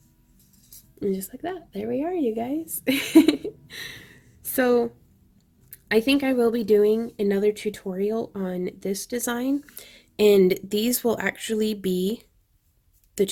And just like that, there we are, you guys. So I think I will be doing another tutorial on this design, and these will actually be the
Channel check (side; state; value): both; identical; correlation 1.00